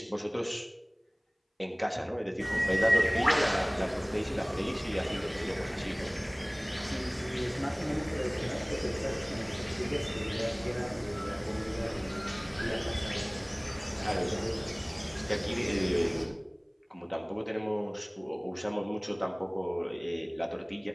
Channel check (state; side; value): identical; both; correlation 1.00